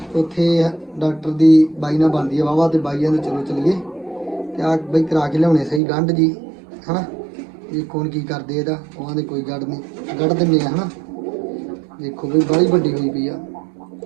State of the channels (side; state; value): left; drops out; at 5.8 s